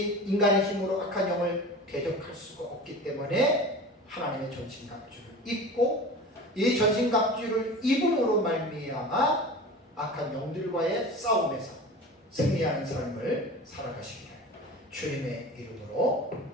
인간의 힘으로 악한 영을 대적할 수가 없기 때문에 하나님의 전신갑주를 입고, 이 전신갑주를 입음으로 말미암아 악한 영들과의 싸움에서 승리하는 삶을 살아가시기를 주님의 이름으로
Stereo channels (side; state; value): both; normal; correlation 0.35